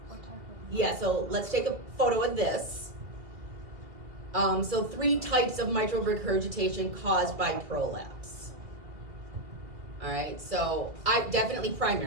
Yeah, so let's take a photo of this. So 3 types of mitral regurgitation caused by prolapse. All right, so I definitely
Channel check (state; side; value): late; left; 2.2 ms